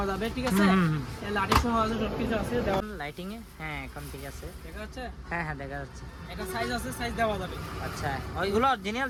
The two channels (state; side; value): identical; both; correlation 1.00